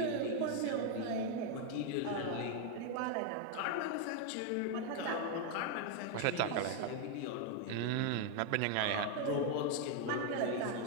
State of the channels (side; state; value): both; different; correlation 0.01